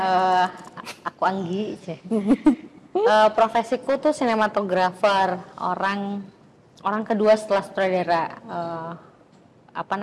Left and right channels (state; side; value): identical; both; correlation 1.00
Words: aku Anggi. Profesiku tuh sinematografer, orang kedua setelah sutradara.